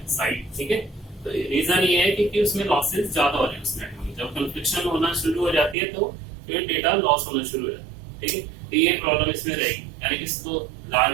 साइट। ठीक है, तो रीजन ये है कि उसमें लॉसेस ज्यादा हो रहे हैं उस नेटवर्क में। जब कन्फ्लिक्शन होना शुरू हो जाती है तो फिर डेटा लॉस होना शुरू हो जाता है। ठीक है, तो ये प्रॉब्लम इसमें रहेगी, यानी कि इसको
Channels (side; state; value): left; drops out; at 5.8 s